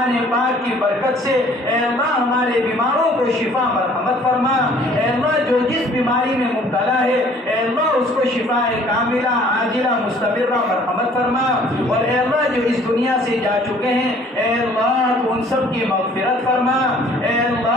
پاک کی برکت سے اے اللہ ہمارے بیماروں کو شفا مرحمت فرما۔ اے اللہ جو جس بیماری میں مبتلا ہے اے اللہ اس کو شفاء کاملہ عاجلہ مستمرہ مرحمت فرما، اور اے اللہ جو اس دنیا سے جا چکے ہیں اے اللہ تو ان سب کی مغفرت فرما۔ اے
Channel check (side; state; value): both; normal; correlation 0.55